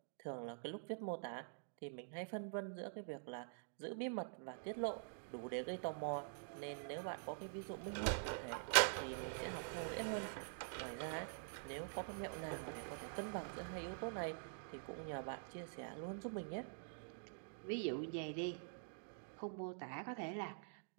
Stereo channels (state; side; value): silent; left; digital silence